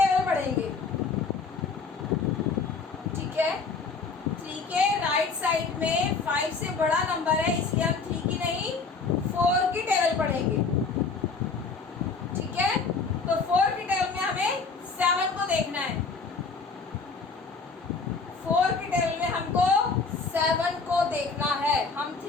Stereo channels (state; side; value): quieter; right; 4.6 dB